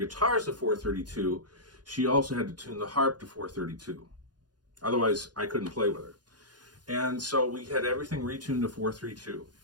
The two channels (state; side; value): late; left; 0.69 ms